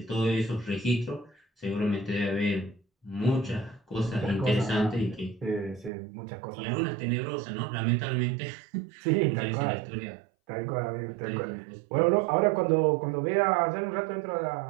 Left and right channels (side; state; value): left; drops out; at 5.9 s